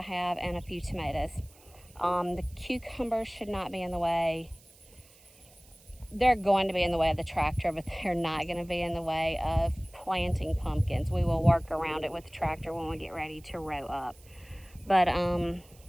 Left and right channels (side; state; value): right; noise; hiss, 26 dB below the sound